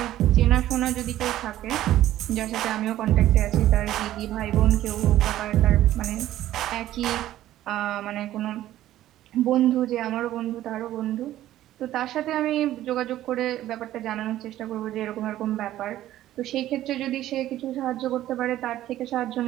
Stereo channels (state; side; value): quieter; left; 13.6 dB